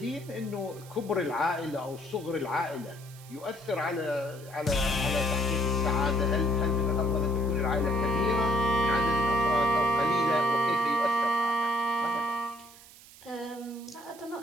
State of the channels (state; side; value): noise; right; hiss, 21 dB below the sound